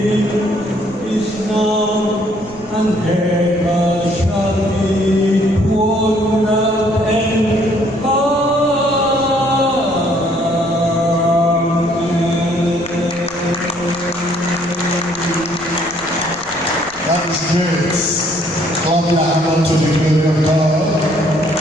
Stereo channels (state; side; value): noise; right; rumble, 23 dB below the sound